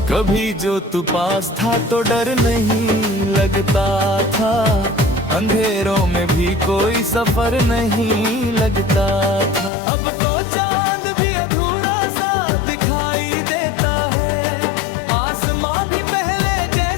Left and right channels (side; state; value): right; drops out; at 9.7 s